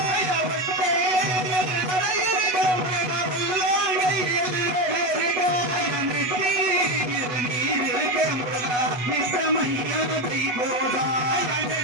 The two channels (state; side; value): late; left; 8.1 ms